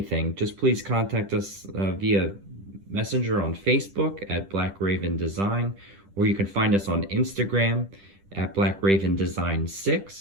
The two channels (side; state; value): left; late; 10 ms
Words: just please contact us via Messenger on Facebook at Black Raven Design, or you can find us on Instagram at